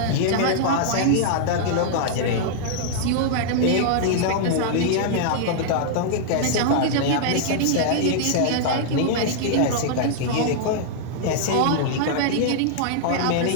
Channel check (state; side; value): different; both; correlation -0.01